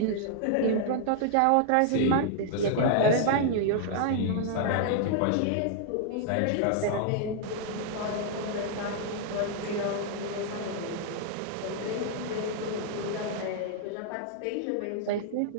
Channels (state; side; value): different; both; correlation -0.01